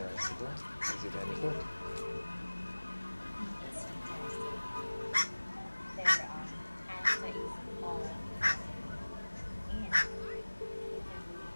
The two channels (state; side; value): inverted; both; correlation -1.00